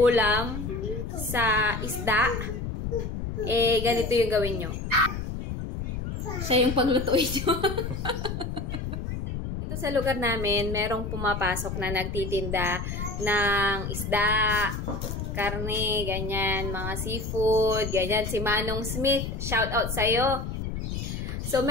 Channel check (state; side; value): noise; left; rumble, 4 dB below the sound